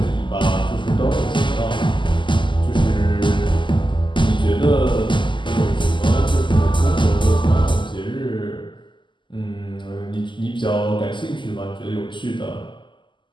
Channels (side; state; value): right; late; 0.24 ms